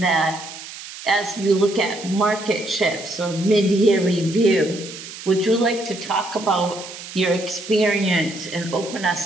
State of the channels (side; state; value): right; noise; hiss, 13 dB below the sound